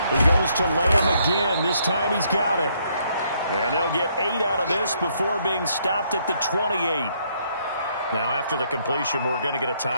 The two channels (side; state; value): both; inverted; correlation -0.71